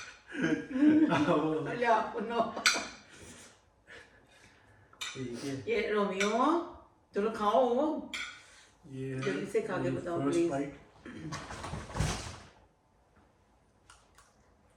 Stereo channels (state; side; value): identical; both; correlation 1.00